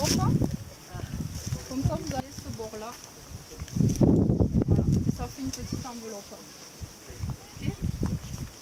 Comme ça, vous avez ce bord-là. Voilà. Ça fait une petite enveloppe. Okay.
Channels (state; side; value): identical; both; correlation 1.00